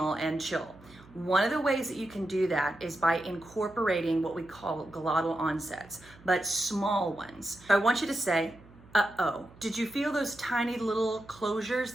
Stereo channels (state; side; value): noise; right; hum, 24 dB below the sound